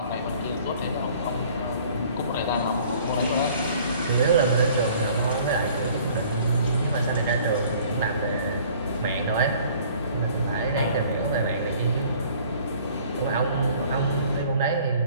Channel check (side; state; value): both; inverted; correlation -0.54